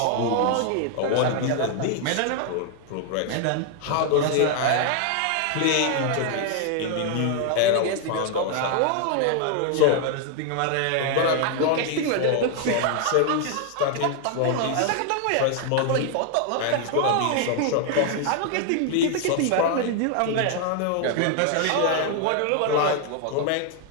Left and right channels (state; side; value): different; both; correlation 0.00